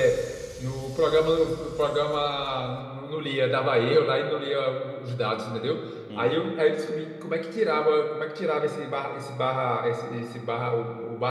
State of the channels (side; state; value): both; identical; correlation 1.00